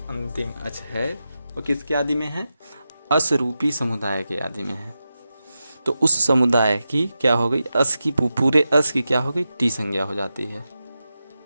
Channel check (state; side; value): inverted; both; correlation -0.91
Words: अंतिम अच है वो किसके आदि में है? अस रूपी समुदाय के आदि में है। तो उस समुदाय की क्या हो गई? अस की, पूरे अस की क्या हो गई? टी संज्ञा हो जाती है।